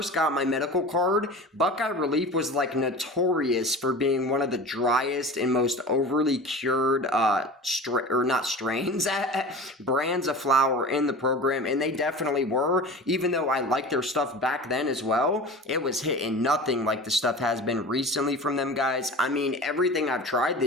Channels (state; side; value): normal; both; correlation 0.35